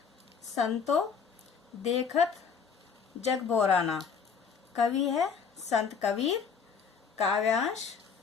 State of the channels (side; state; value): right; quieter; 6.2 dB